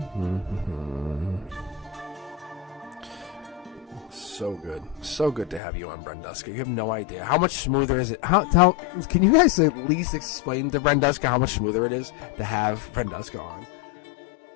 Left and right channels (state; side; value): drops out; right; at 5.6 s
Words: So good to have you on, Brenduska. You have no idea how much smoother is it. Can you guys at least explain to Brenduska how much smoother it is to have Brenduska on?